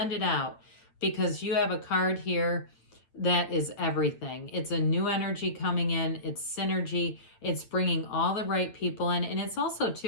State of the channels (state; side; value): late; right; 8.8 ms